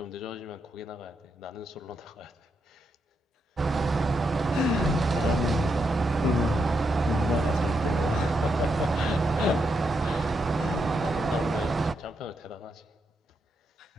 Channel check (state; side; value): normal; both; correlation 0.82